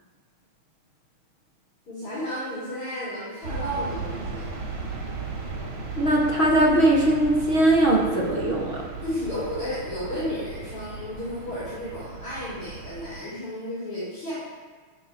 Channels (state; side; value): late; right; 6.2 ms